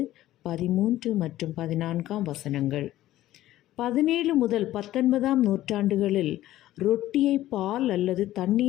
மற்றும் 14 17 முதல் 19ஆம் நூற்றாண்டுகளில் ரொட்டியை பால் அல்லது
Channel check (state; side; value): quieter; right; 14.6 dB